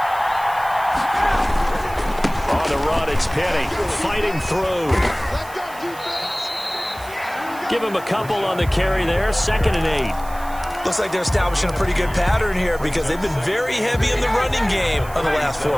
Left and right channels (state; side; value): noise; right; hiss, 19 dB below the sound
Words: On the run, it's Penny fighting through. Give him a couple on the carry there. 2nd and 8. Looks like they're establishing a pretty good pattern here, because they've been very heavy in the running game on the last